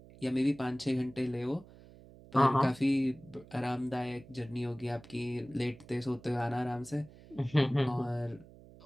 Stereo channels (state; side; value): noise; right; hum, 21 dB below the sound